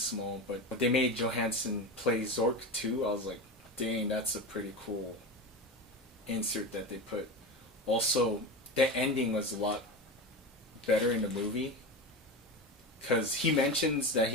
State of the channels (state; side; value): normal; both; correlation 0.23